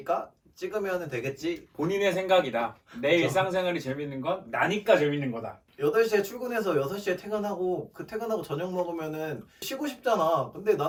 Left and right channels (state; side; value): identical; both; correlation 1.00